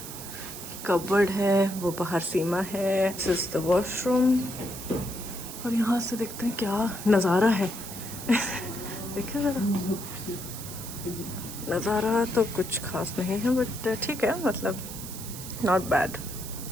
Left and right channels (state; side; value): noise; right; hiss, 10 dB below the sound